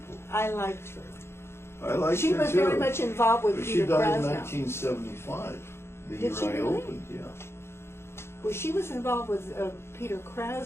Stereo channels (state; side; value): late; right; 0.12 ms